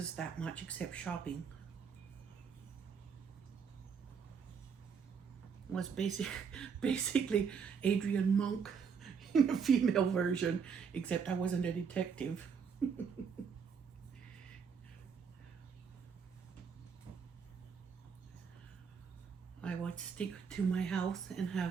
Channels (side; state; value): left; quieter; 6.3 dB